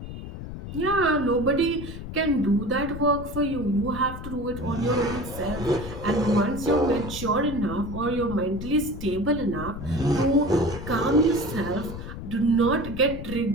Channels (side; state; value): left; noise; rumble, 9 dB below the sound